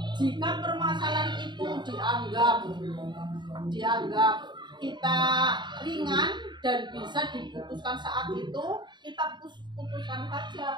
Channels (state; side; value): late; left; 0.22 ms